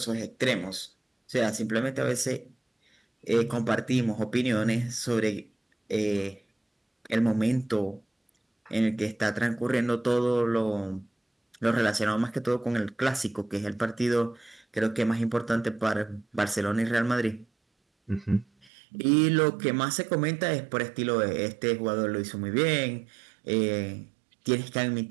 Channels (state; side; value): drops out; left; at 18.7 s